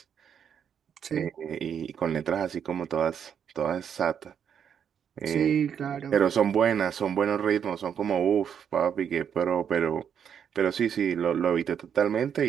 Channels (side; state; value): left; quieter; 8.1 dB